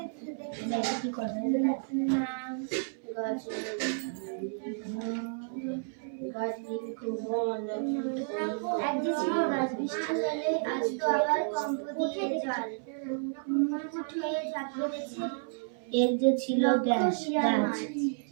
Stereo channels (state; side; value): silent; left; 57 dB below the other